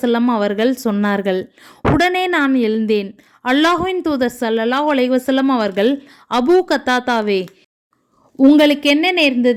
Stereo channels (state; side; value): identical; both; correlation 1.00